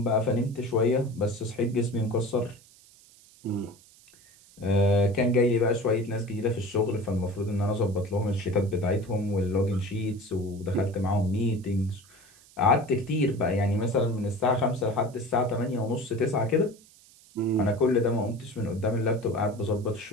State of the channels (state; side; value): noise; right; hiss, 26 dB below the sound